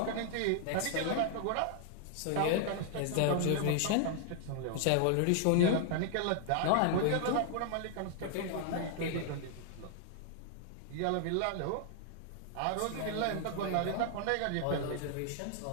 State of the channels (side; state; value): both; different; correlation 0.00